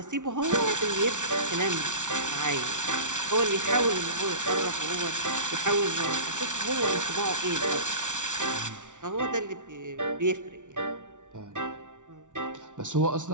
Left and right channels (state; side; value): late; left; 0.87 ms